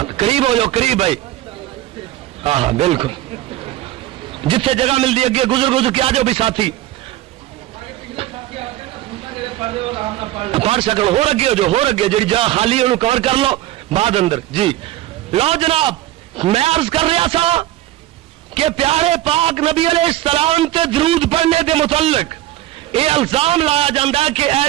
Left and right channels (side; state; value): left; quieter; 14.8 dB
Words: قریب ہو جاؤ، قریب بھائی، ہاں ہاں بالکل، جتنے جگہ ملتی اگے گزر کے آ جاؤ بھی ساتھی پڑھ سکو، ہو اگے ہو جاؤ، ہو اگے جی جگہ خالی انہوں کور کر لو بعد اندر جی۔ لو جناب میں عرض کر رہا تھا کہ پیارے پاک نبی علیہ السلام تے درود پڑھنے کے متعلق یہ الزام لایا جاتا ہے کہ